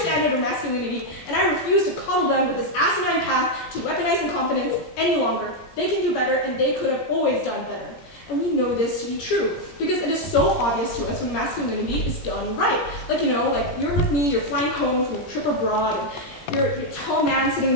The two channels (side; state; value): right; late; 17 ms